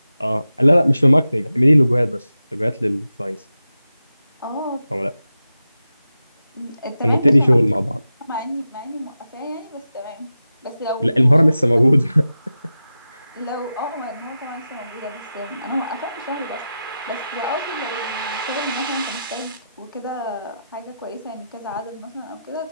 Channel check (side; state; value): both; inverted; correlation -0.92